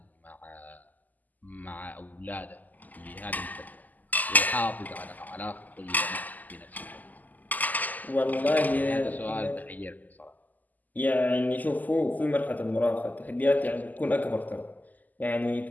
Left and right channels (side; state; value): right; late; 0.082 ms